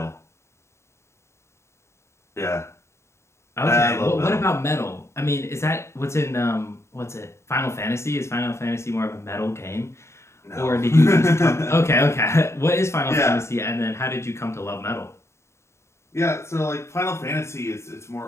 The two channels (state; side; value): late; right; 0.13 ms